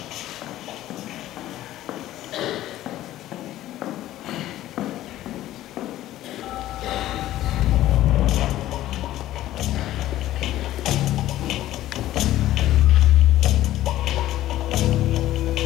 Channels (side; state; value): right; quieter; 14.2 dB